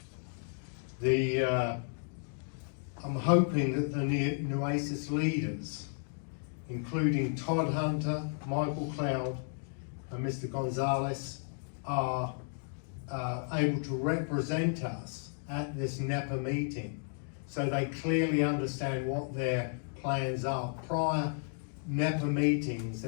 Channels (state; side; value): silent; right; 56 dB below the other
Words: I'm hoping that the Nueces leaders, including Todd Hunter, Michael Cloud, and Mr. Gonzalez, are able to represent us at this NEPA meeting, so they clearly understand what their plans are. Prior NEPA meetings,